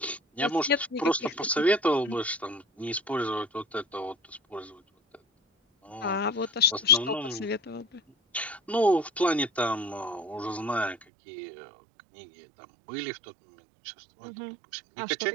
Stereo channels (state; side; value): drops out; left; at 11.1 s